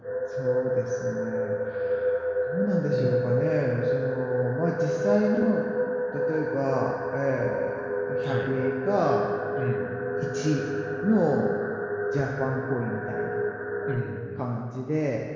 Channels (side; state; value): both; identical; correlation 1.00